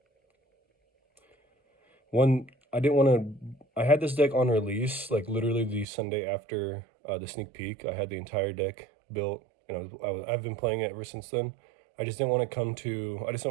I had this deck on release, like literally the Sunday after the sneak peek. I had the entire deck built, and I've been playing it ever since then. I just didn't want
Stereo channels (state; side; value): drops out; left; at 5.9 s